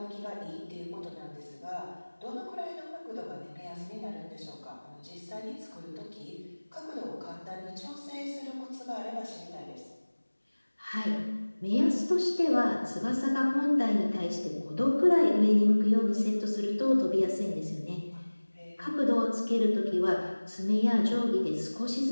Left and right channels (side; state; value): both; inverted; correlation -1.00